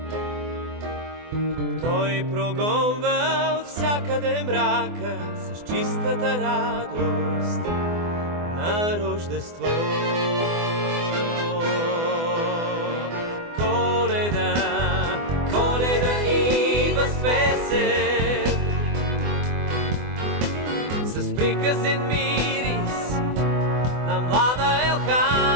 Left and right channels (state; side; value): late; left; 24 ms